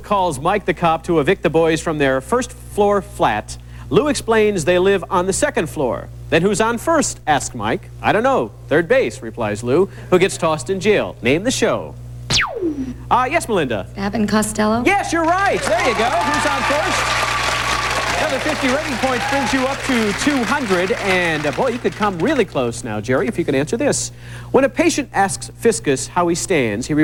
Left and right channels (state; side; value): identical; both; correlation 1.00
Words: Mike the cop to evict the boys from their first-floor flat, Lou explains they live on the second floor. Then who's on first, asks Mike. "I don't know. Third base," replies Lou, who gets tossed in jail. Name the show. Yes, Melinda. Abbott and Costello? Yes, you're right. There you go. Who's on first? Another 50 rating points brings you up to 200. And, boy, you could come really close now, Jerry, if you can answer this. When a patient asks Fiscus how he stands, he